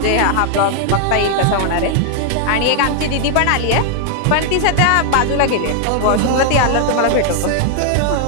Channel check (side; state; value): both; different; correlation 0.00